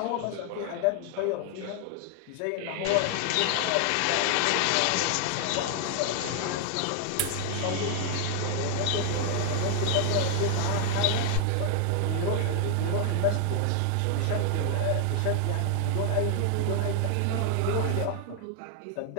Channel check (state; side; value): different; both; correlation 0.00